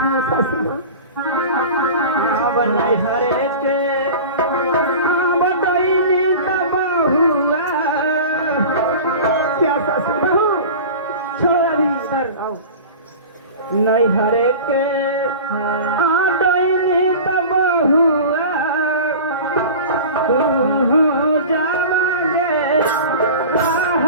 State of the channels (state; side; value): inverted; both; correlation -0.36